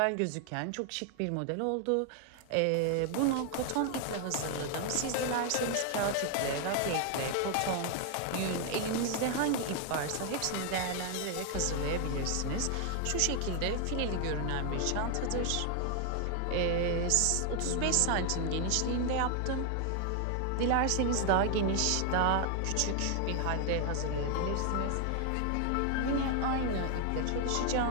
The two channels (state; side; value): different; both; correlation 0.00